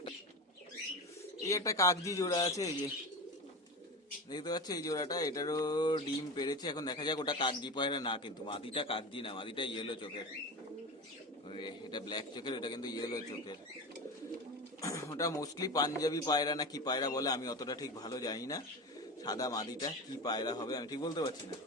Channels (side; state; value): both; normal; correlation 0.26